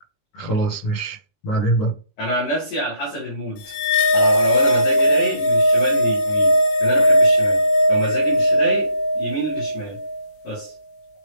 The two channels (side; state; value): right; late; 20 ms